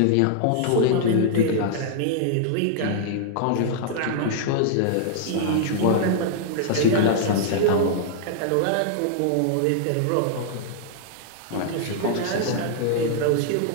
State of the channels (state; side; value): different; both; correlation -0.01